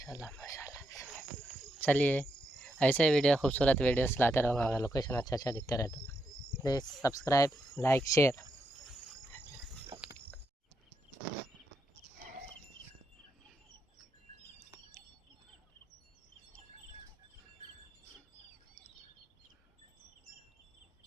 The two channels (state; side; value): normal; both; correlation 0.81